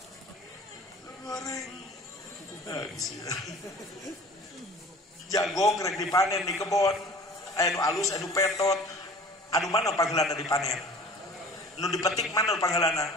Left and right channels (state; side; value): normal; both; correlation 0.44